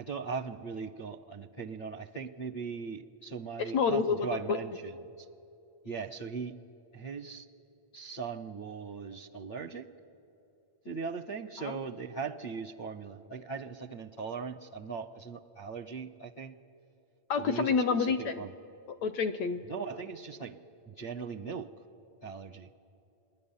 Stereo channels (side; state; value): right; late; 8.8 ms